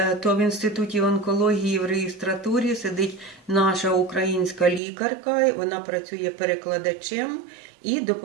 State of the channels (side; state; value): left; drops out; at 4.8 s